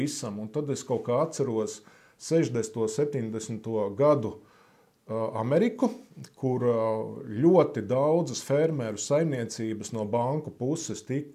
Un tad es kaut kā atceros 60. 70. gadu Ameriku, kur ļoti daudzas fermeru saimniecības no banku puses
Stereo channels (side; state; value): both; identical; correlation 1.00